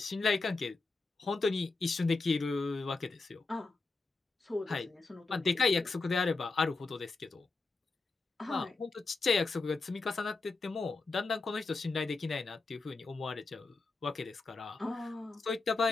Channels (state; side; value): quieter; right; 3.8 dB